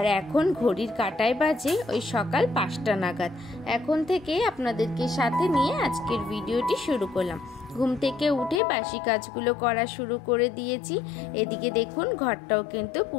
এখন ঘড়ির কাঁটায় বাজে ওই সকাল 5টা নাগাদ। এখন থেকে আপনাদেরকে সাথে নিয়ে আজকের ভিডিওটি শুরু করলাম। ঘুম থেকে উঠে বাসি কাজগুলো করা শুরু করে দিয়েছি। এদিকে দেখুন ঘরটাও কিন্তু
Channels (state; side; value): drops out; right; at 8.6 s